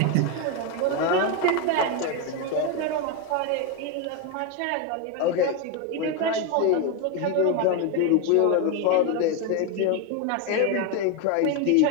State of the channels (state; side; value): different; both; correlation 0.02